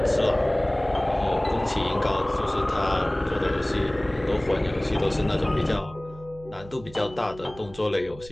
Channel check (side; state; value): right; noise; hum, 19 dB below the sound